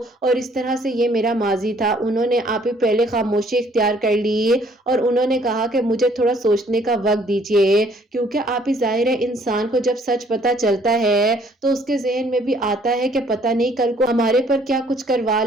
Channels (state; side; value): normal; both; correlation 0.62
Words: اور اس طرح سے یہ میرا ماضی تھا، انہوں نے آپ ہی پہلے خاموشی اختیار کر لی اور انہوں نے کہا کہ مجھے تھوڑا سوچنے کا وقت دیجیے، کیونکہ آپ ہی ظاہر ہے انسان کو جب سچ پتا چلتا ہے تو اس کے ذہن میں بھی آتا ہے کہ پتہ نہیں کل کو ہمارے پر کیا کچھ کروا